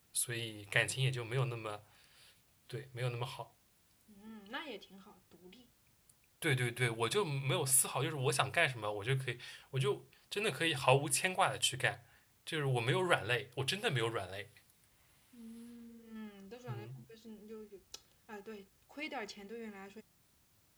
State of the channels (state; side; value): identical; both; correlation 1.00